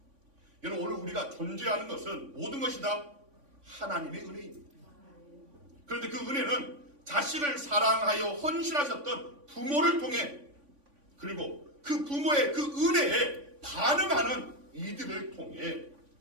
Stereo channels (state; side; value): late; left; 3.5 ms